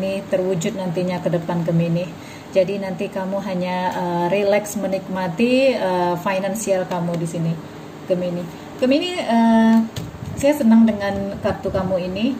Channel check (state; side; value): identical; both; correlation 1.00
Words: terwujud nantinya ke depan Gemini. Jadi nanti kamu hanya relax menikmati finansial kamu di sini Gemini. Gemini, saya senang dengan kartu kamu ini.